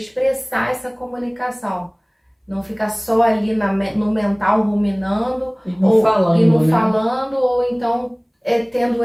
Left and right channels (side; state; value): both; identical; correlation 1.00